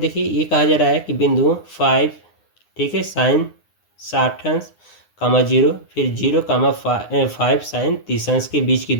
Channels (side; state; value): right; late; 9.7 ms